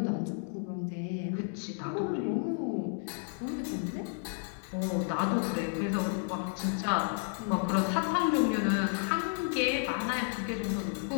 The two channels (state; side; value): silent; right; 56 dB below the other